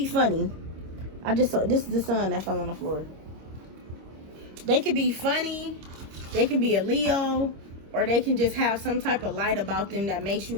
funny. I just saw, this is the sun that fell on the floor. They could be funny, they can be a Leo, or they can just have some type of light about them that makes you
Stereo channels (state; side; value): late; left; 26 ms